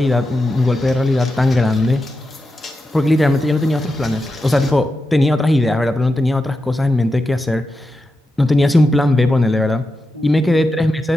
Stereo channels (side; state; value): both; normal; correlation 0.89